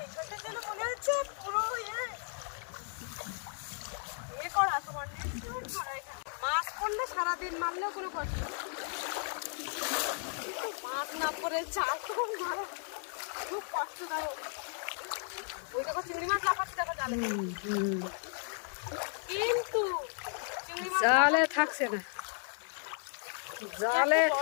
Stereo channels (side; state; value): right; silent; 55 dB below the other